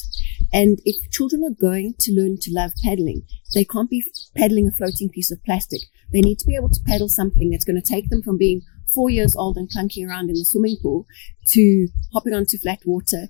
And if children are going to learn to love paddling, they can't be paddling a floating piece of plastic. They need to be able to paddle something that's going to take them from being 4 years old and clunking around in the swimming pool to hopping onto flat water,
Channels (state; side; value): quieter; right; 36.2 dB